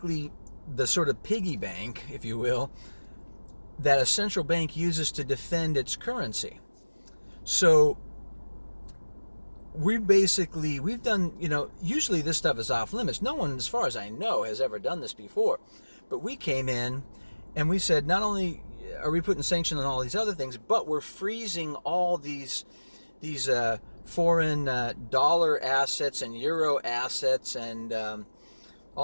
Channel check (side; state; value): both; inverted; correlation -1.00